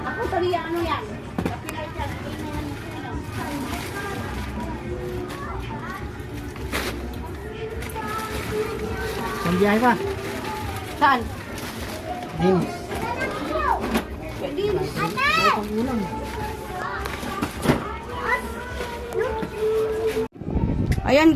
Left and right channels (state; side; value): identical; both; correlation 1.00